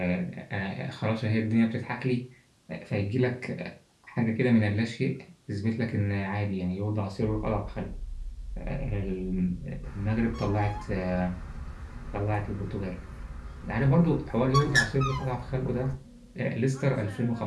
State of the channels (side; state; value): both; identical; correlation 1.00